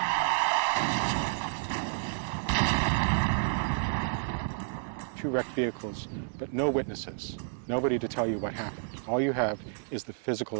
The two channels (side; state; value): left; silent; 58 dB below the other